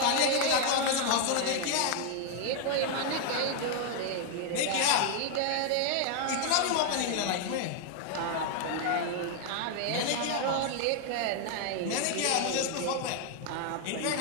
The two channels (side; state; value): both; different; correlation 0.00